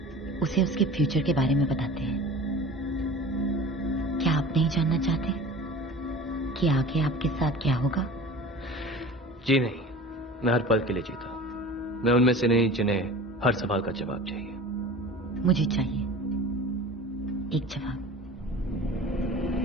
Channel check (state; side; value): normal; both; correlation 0.39